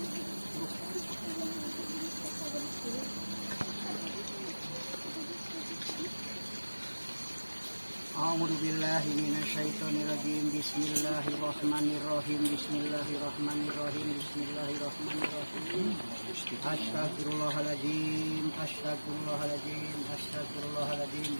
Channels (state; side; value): inverted; both; correlation -1.00